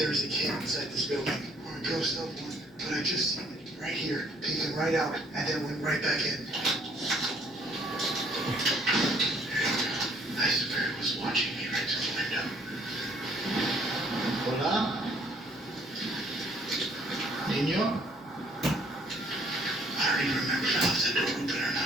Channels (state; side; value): normal; both; correlation 0.62